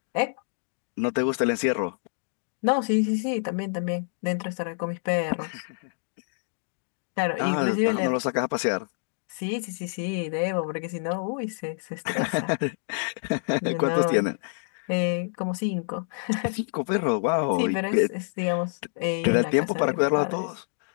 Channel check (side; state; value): right; silent; digital silence